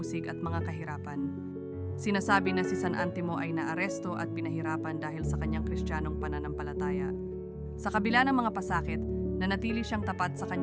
at mga kahirapan. Sinasabi na si San Antimo ay naaresto at pinahirapan dahil sa kanyang Kristiyanong pananampalataya. Sa kabila ng mga pasakit, nanatili siyang tapat sa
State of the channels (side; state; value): both; identical; correlation 1.00